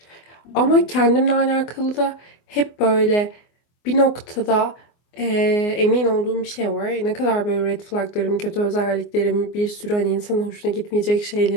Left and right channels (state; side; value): late; right; 24 ms